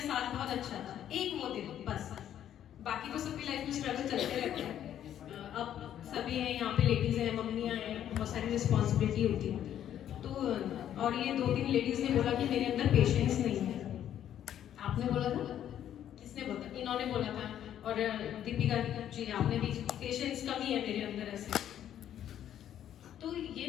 साल बहुत अच्छा था, एक वो दिन बस। बाकी तो सबकी लाइफ में स्ट्रगल चलते रहते हैं। अब सभी हैं यहाँ पे, लेडीज हैं, मम्मियाँ हैं, बहुत सारी रिस्पॉन्सिबिलिटी होती है। तो और ये 2-3 लेडीज ने बोला कि मेरे अंदर पेशेंस नहीं है। आपने बोला था, किसने बोला? इन्होंने बोला था, और दीपिका जी आपने भी, पेशेंस कमी है मेरे अंदर ऐसे। तो ये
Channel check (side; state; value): right; quieter; 10.6 dB